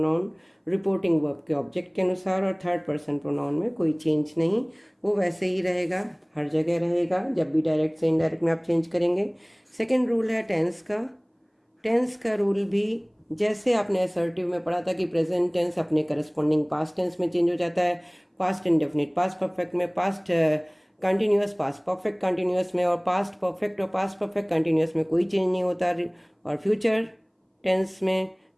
reporting verb के ऑब्जेक्ट के अनुसार, और थर्ड पर्सन प्रोनाउन में कोई चेंज नहीं, वो वैसे ही रहेगा, हर जगह रहेगा। जब भी डायरेक्ट से इनडायरेक्ट में आप चेंज करेंगे। सेकंड रूल है टेंस का। टेंस का रूल भी जैसे आपने असर्टिव में पढ़ा था कि प्रेजेंट टेंस अपने करस्पॉन्डिंग पास्ट टेंस में चेंज हो जाता है, पास्ट इंडेफिनिट पास्ट परफेक्ट में, past continuous past perfect continuous में, और पास्ट परफेक्ट और पास्ट परफेक्ट कंटिन्यूअस में कोई चेंज नहीं होता। और फ्यूचर टेंस में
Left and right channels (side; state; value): both; identical; correlation 1.00